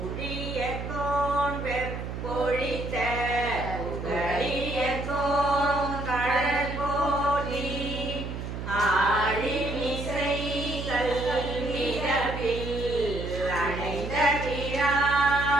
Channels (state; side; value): noise; right; hum, 6 dB below the sound